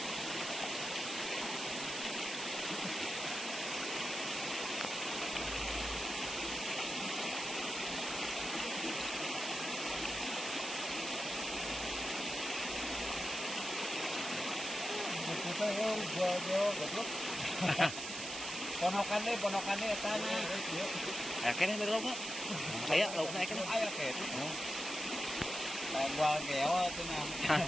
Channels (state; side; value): noise; right; hiss, 6 dB below the sound